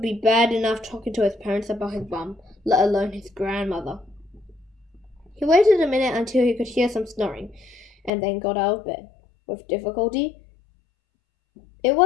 bad enough talking to his parents about his bum, let alone his grandmother. He waited a minute until he could hear some snoring, and then got out of bed. With difficulty. It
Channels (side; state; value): right; drops out; at 8.1 s